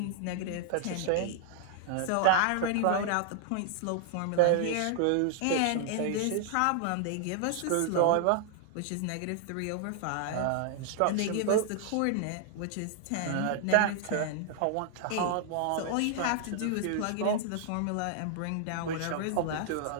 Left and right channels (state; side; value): different; both; correlation -0.01